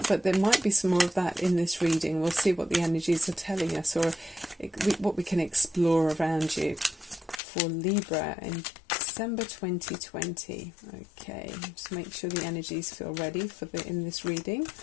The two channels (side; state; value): right; drops out; at 7.4 s